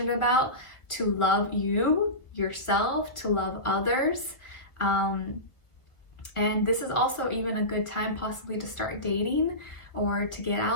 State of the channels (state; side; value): late; right; 1.4 ms